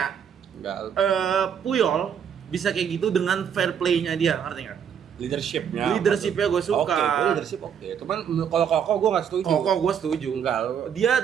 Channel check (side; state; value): left; quieter; 8.0 dB